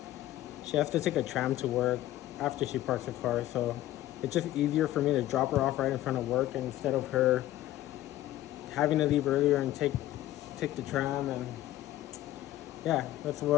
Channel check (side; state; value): right; quieter; 14.6 dB